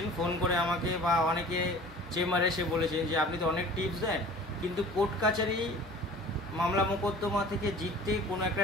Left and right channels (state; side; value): normal; both; correlation 0.45